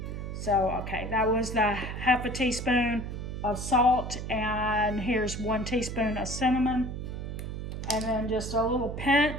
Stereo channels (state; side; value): noise; right; hum, 6 dB below the sound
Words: So, okay, that was the half a teaspoon of salt, and here's 1 teaspoon of cinnamon, and then just a little